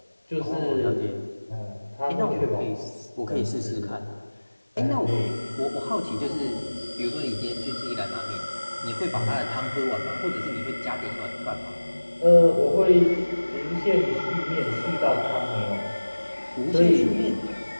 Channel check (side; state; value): both; inverted; correlation -1.00